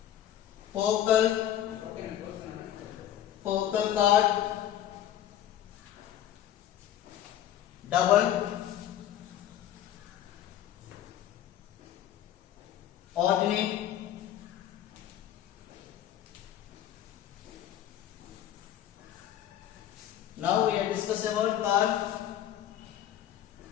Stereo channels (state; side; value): quieter; right; 11.5 dB